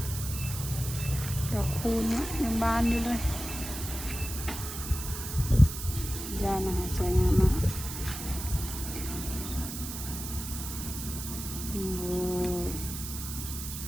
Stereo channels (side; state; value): right; noise; hiss, 7 dB below the sound